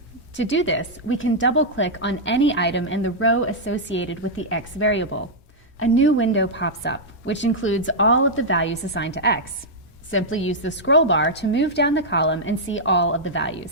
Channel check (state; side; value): normal; both; correlation -0.07